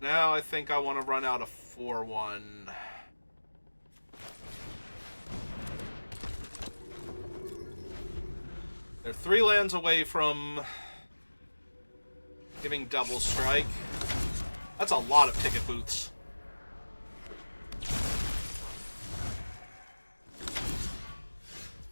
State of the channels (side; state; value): both; inverted; correlation -1.00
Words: Now I think I want to run out a 4-1. They're 3 lands away from giving double strike. That's a lot of ticket booths.